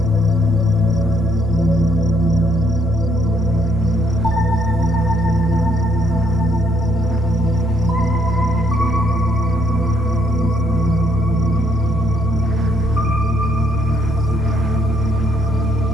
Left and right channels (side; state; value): both; normal; correlation 0.70